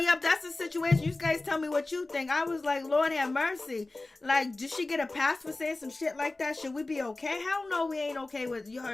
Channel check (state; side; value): quieter; right; 3.1 dB